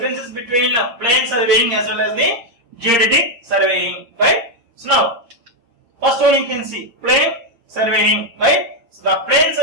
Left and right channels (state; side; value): late; left; 8.6 ms